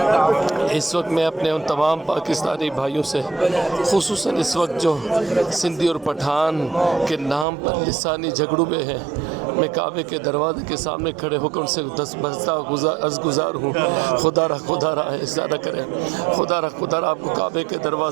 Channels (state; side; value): drops out; left; at 7.5 s